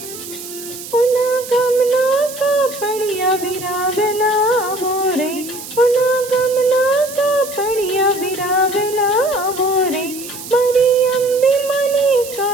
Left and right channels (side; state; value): right; noise; hiss, 12 dB below the sound